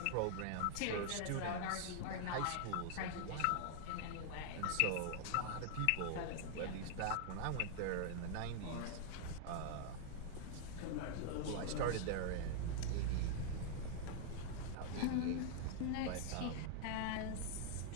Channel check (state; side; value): different; both; correlation 0.00